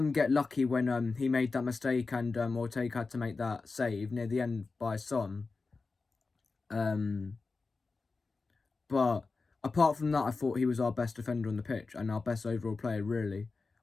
get lucky when he made that mistake and Ortega had to make that save near the end by Son. But apart from that, I thought he was our best defender on the pitch and our best overall player, really,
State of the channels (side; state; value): right; quieter; 4.1 dB